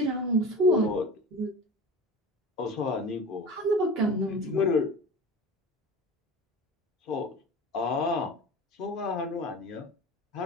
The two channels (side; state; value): both; normal; correlation 0.35